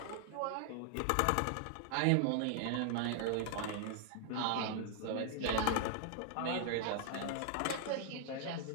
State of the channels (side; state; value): both; different; correlation 0.00